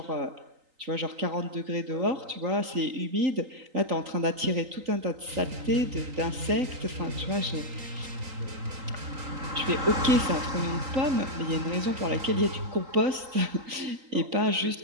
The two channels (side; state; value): left; late; 3.9 ms